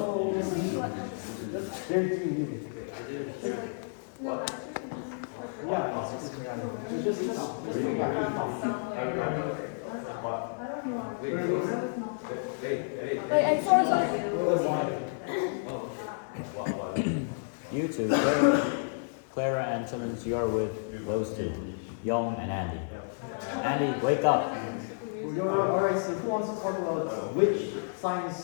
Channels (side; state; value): right; silent; digital silence